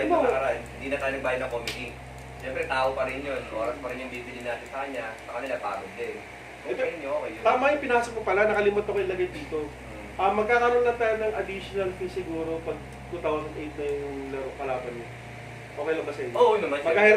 ng nakaraan, hindi na tayo nagbayad ng committee. Siyempre, tao pa rin yun. Oras pa rin yung bibili natin sa kanya. Sa kanila, pagod din. Kung kayo nyo, okay yun. Tama yung pinasok mo pala, nakalimot ako ilagay dito. Magkakaroon lang tayo ng additional fee siguro pag 2008 na yung laro kalaban niya. Okay lang ba sa inyo? Oo naman.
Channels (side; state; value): both; identical; correlation 1.00